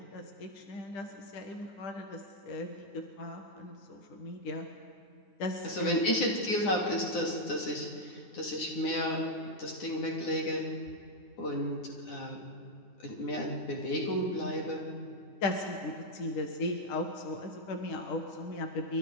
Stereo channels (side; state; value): right; late; 9.8 ms